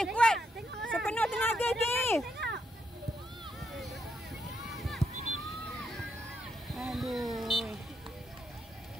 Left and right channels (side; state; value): both; normal; correlation 0.79